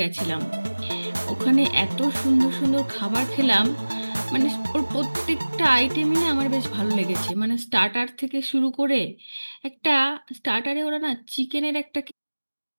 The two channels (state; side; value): inverted; both; correlation -1.00